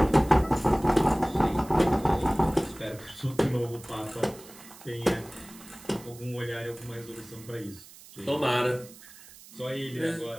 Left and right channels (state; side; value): noise; right; hiss, 20 dB below the sound